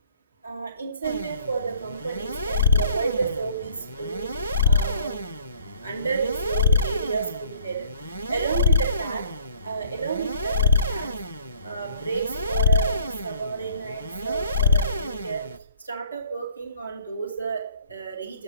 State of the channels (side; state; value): both; inverted; correlation -0.57